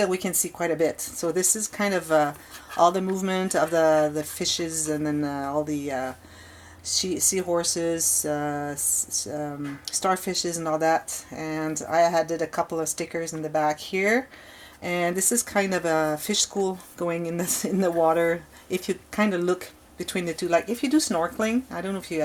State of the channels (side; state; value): both; identical; correlation 1.00